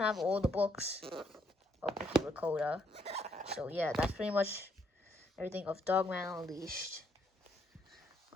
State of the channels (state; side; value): normal; both; correlation 0.72